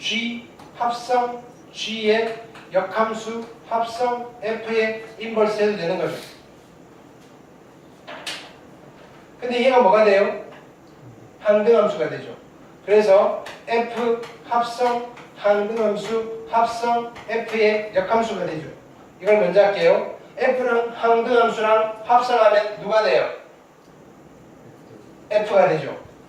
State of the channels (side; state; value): both; identical; correlation 1.00